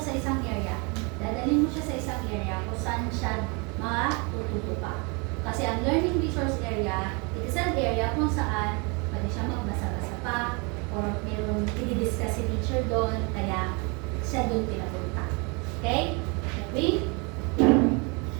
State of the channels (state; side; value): quieter; left; 31.1 dB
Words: sa isang area, dadalhin mo siya sa isang area kung saan siya matututo pa. Kasi ang learning resource area, it is an area kung saan pwede siya magbasa-basa pa or mayroong i-discuss si teacher doon, kaya siya doon pinapunta. Okay? Okay?